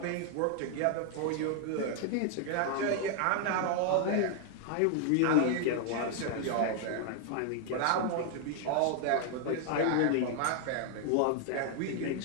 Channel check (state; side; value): different; both; correlation 0.00